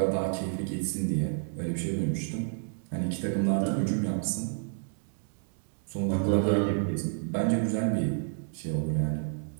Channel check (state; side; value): silent; left; digital silence